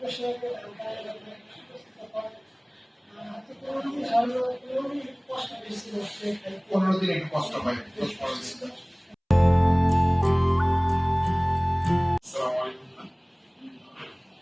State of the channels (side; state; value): both; identical; correlation 1.00